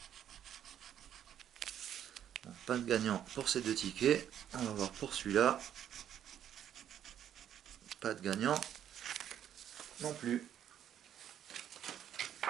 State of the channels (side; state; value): left; quieter; 10.1 dB